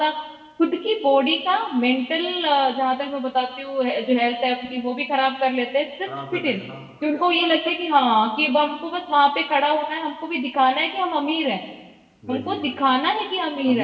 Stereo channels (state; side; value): identical; both; correlation 1.00